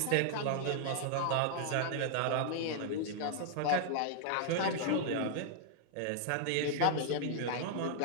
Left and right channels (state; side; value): different; both; correlation -0.01